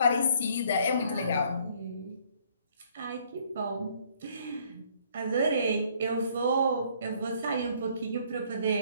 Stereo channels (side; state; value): both; inverted; correlation -0.63